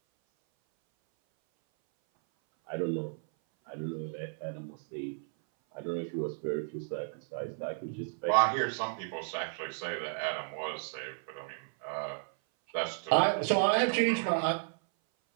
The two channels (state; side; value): silent; left; 56 dB below the other